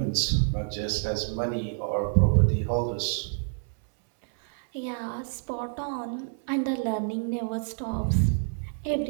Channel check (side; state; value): left; silent; 59 dB below the other